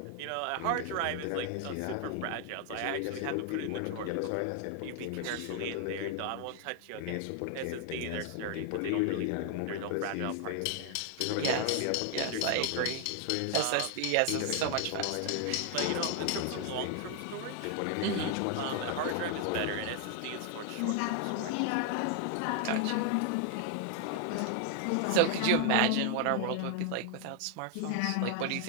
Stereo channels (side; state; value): both; different; correlation 0.00